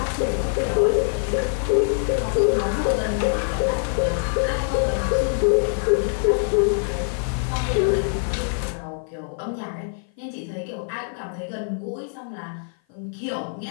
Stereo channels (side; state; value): right; silent; 55 dB below the other